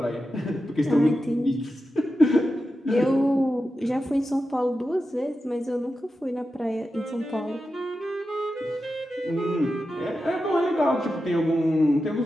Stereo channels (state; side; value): normal; both; correlation 0.91